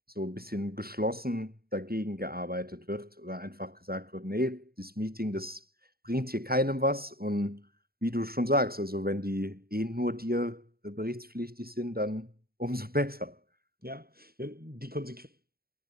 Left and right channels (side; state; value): left; late; 0.44 ms